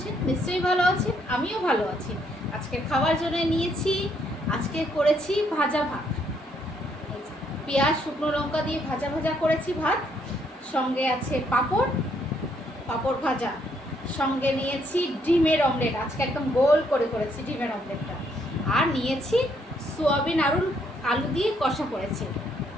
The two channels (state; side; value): normal; both; correlation 0.71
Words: নিশ্চয়ই ভালো আছেন, আমিও ভালো আছি। আজকে খাওয়ার জন্য নিয়েছি, আজকে করেছি ভাজা ভাত। পেঁয়াজ শুকনো লঙ্কা দিয়ে ভাজা ভাজা করেছি ভাত, সঙ্গে আছে পাঁপড়, পাঁপড় ভাজা, সঙ্গে নিয়েছি ডিমের অমলেট। আজকে একদম গোল করে করেছি ডিমের অমলেটটা। আর নিয়েছি সোয়াবিন আলু দিয়ে কষা করেছি,